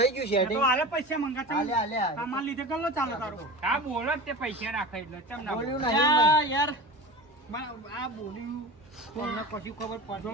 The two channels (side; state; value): both; normal; correlation 0.32